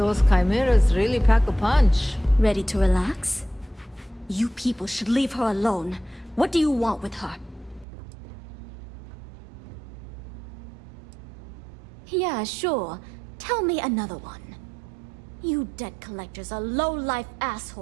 chimeras really pack a punch. Ready to relax? You people should leave her alone. What do you want with her? Yeah, sure. Tell me another one. You debt collectors are low-life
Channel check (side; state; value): left; drops out; at 7.9 s